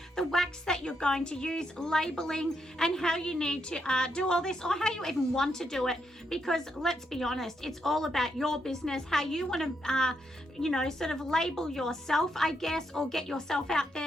the wax that you're going to use, labeling, and how you need to do all this, or how you even want to do it, because let's be honest, it's all about your business, how you want to, sort of label yourself, I guess, or get yourself out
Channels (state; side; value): normal; both; correlation 0.80